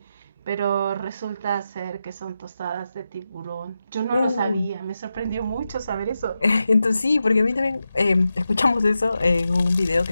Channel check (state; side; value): inverted; both; correlation -0.90